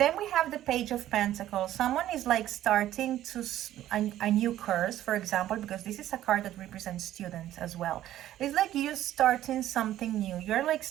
we have the Page of Pentacles. Someone is like starting to a new course, for example, because this is a card that represents students as well. It's like you starting something new. You're like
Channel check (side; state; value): left; quieter; 13.0 dB